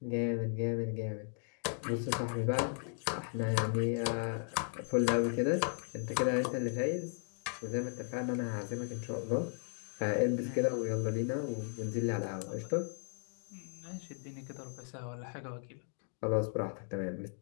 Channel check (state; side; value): silent; right; 54 dB below the other